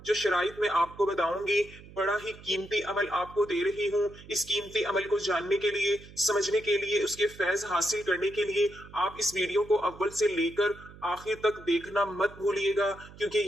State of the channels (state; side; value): noise; right; hum, 19 dB below the sound